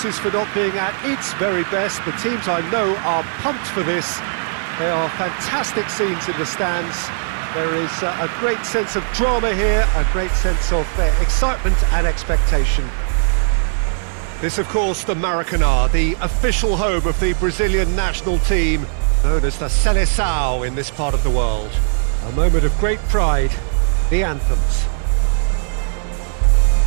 for not being at its very best. The teams I know are pumped for this. There are fantastic scenes in the stands. There is a great sense of drama here, a great sense of excitement and expectation. This, of course, the Maracanã, the official home of the Brazilian national team, known as the Seleção in this part of the world. A moment of great pride, the anthems.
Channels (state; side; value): silent; left; 59 dB below the other